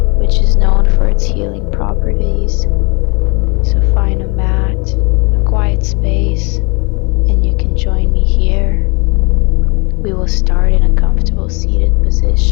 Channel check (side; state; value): right; quieter; 30.8 dB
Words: which is known for its healing properties. So find a mat, a quiet space, and you can join me here. We will start in a comfortable seated